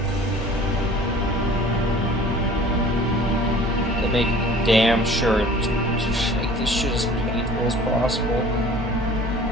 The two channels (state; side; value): normal; both; correlation 0.46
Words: To make damn sure to make this shit as painful as possible.